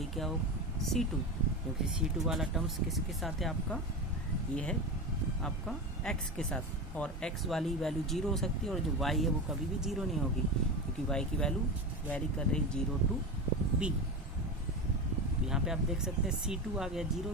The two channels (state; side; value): normal; both; correlation 0.22